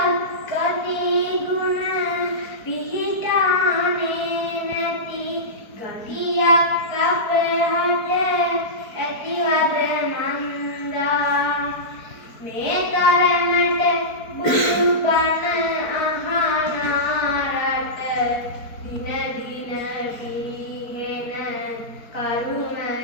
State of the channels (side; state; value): right; late; 4.5 ms